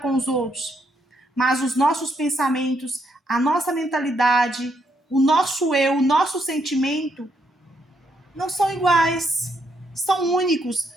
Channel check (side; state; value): both; normal; correlation 0.75